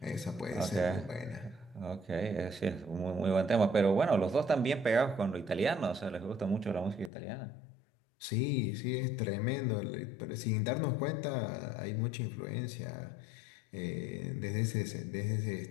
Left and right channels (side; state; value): right; drops out; at 7.1 s